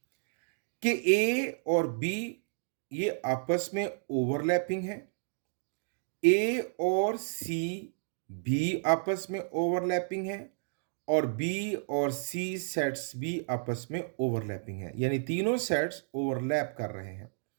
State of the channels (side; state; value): left; silent; digital silence